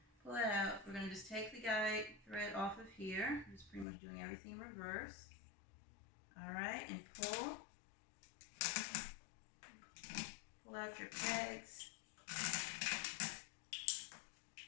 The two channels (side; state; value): right; drops out; at 3.9 s